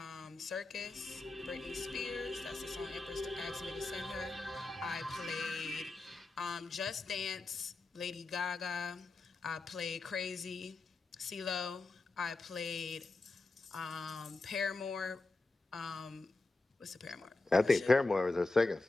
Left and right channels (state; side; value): quieter; right; 3.3 dB